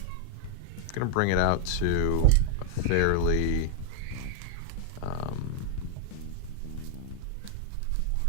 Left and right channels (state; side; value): different; both; correlation 0.00